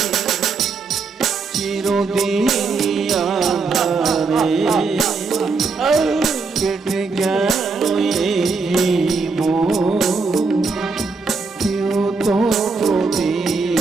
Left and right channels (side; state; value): left; quieter; 4.4 dB